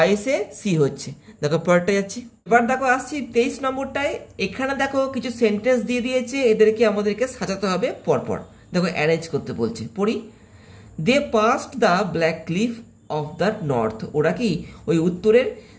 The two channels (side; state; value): both; identical; correlation 1.00